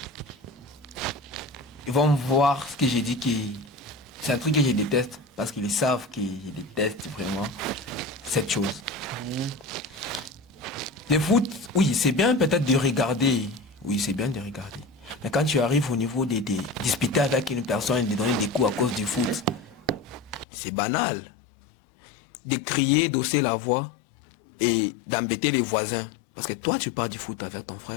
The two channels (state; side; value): drops out; right; at 20.5 s